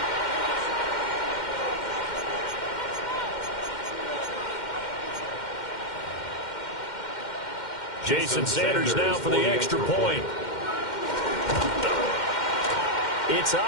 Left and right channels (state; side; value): late; right; 2.1 ms